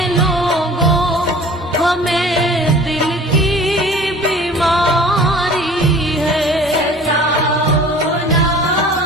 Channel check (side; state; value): both; normal; correlation 0.45